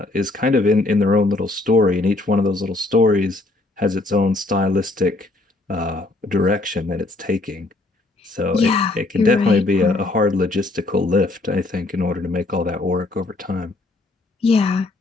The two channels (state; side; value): quieter; right; 3.0 dB